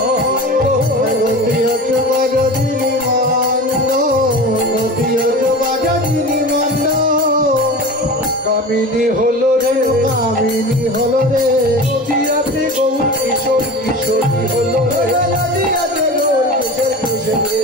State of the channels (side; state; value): both; normal; correlation 0.32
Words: মতি অচুগ যোজিনী মান, নতি অচুগ যোজিনী মান। কামিনী হলো রে, কামিনী হলো রে, নদিয়াতে গৌর কিশোর কিশোরী হলো রে, নদিয়াতে গৌর কিশোর কিশোরী